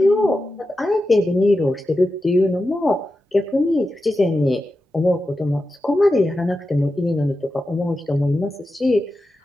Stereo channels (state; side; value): normal; both; correlation 0.91